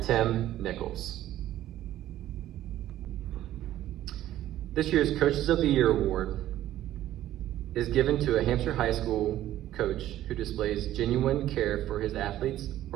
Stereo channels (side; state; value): left; quieter; 13.3 dB